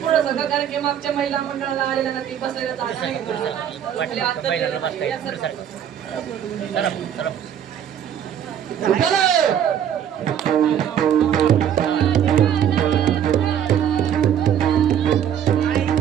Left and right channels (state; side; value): quieter; left; 9.4 dB